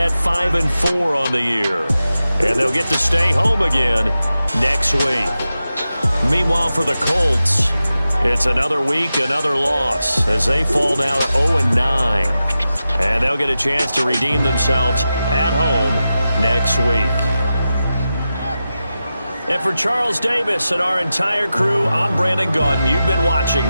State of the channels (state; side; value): inverted; both; correlation -0.92